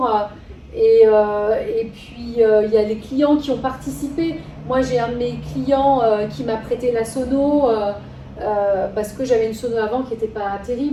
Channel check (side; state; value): both; identical; correlation 1.00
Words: et puis il y a les clients qui ont participé. Moi j'ai un de mes clients qui m'a prêté la sono parce que j'avais une sono avant qui n'était pas